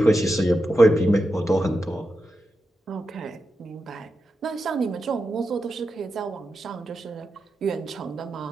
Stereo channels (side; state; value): both; normal; correlation 0.89